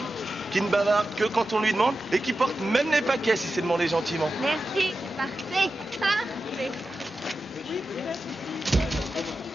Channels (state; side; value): normal; both; correlation 0.92